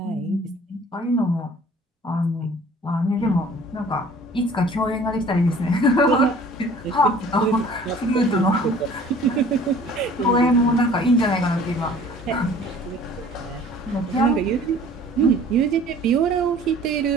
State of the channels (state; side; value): normal; both; correlation 0.50